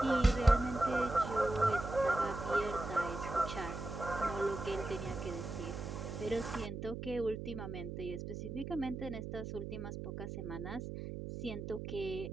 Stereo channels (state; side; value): noise; right; hum, 6 dB below the sound